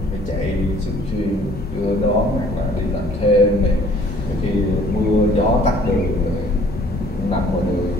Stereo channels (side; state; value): both; normal; correlation 0.56